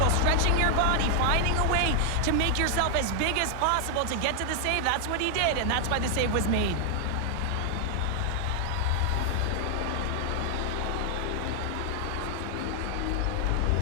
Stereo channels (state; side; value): different; both; correlation 0.00